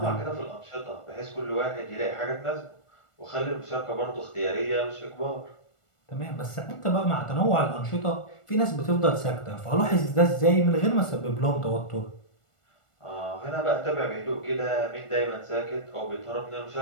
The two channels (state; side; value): late; right; 1.4 ms